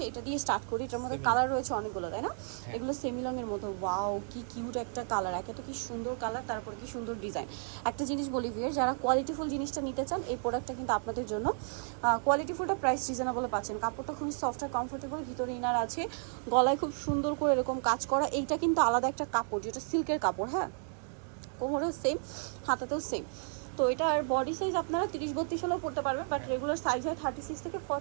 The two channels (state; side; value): silent; left; 56 dB below the other